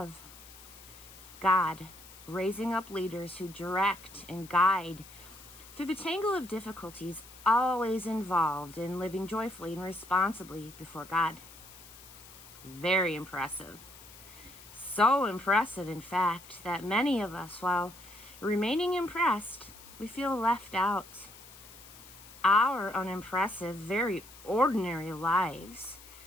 God raising up leaders who direct and guide through the tangle of difficulties always involved in living joyfully and responsibly before God. Very impressive. So impressive, in fact, that many of us, while remaining impressed, we feel left out. Our unimpressive, very ordinary lives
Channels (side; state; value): left; noise; hiss, 19 dB below the sound